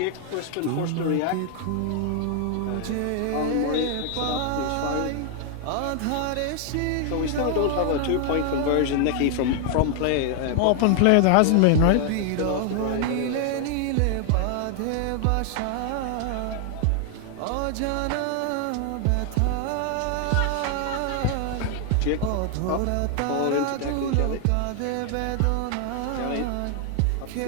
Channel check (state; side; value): different; both; correlation 0.00